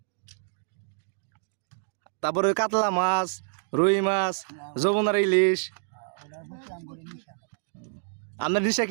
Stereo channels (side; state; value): left; silent; digital silence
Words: তারপরে কাতলা মাছ, রুই মাছ, যমুনার ইলিশ। ওটা বুঝলাম করে নিশা আপনার নিশা